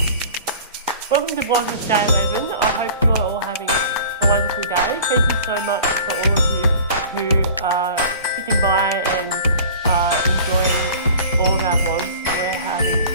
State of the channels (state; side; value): inverted; both; correlation -0.43